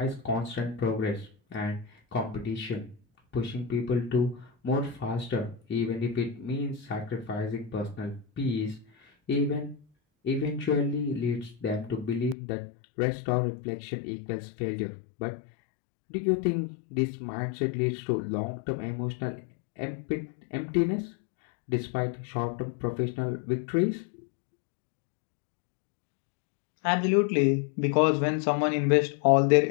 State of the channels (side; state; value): right; drops out; at 12.4 s